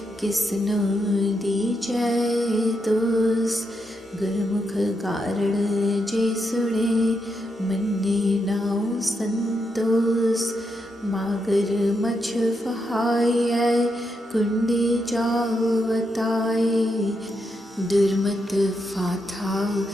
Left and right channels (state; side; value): normal; both; correlation 0.82